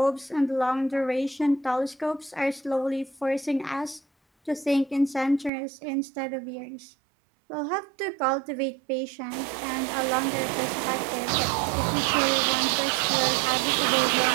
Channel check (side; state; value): left; drops out; at 5.5 s